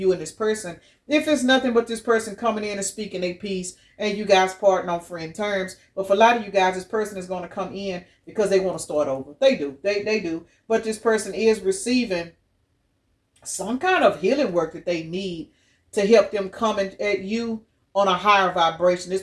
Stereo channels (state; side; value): identical; both; correlation 1.00